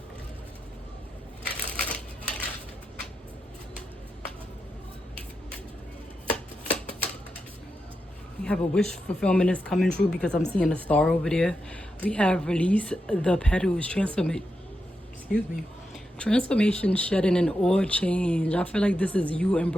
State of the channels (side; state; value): both; normal; correlation 0.87